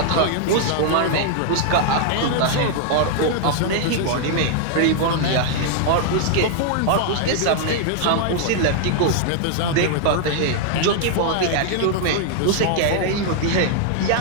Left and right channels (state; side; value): different; both; correlation 0.00